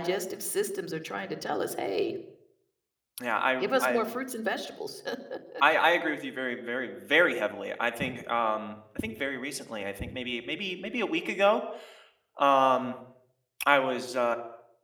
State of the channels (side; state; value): both; identical; correlation 1.00